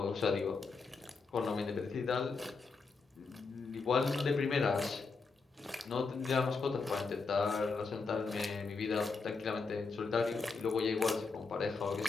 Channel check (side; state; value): right; quieter; 4.5 dB